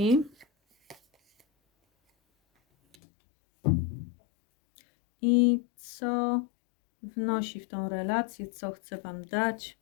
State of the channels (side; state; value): right; drops out; at 3.0 s